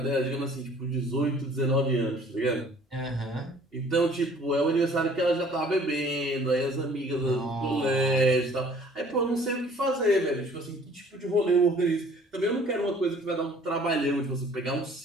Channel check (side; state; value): both; normal; correlation 0.54